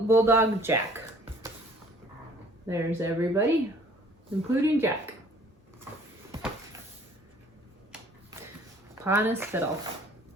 Jack. There's everybody, including Jack. Pa and his fiddle.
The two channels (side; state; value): both; normal; correlation 0.55